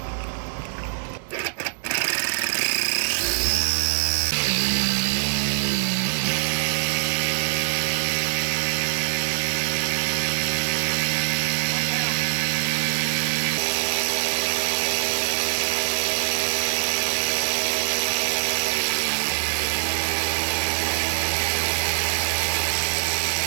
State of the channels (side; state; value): left; silent; 63 dB below the other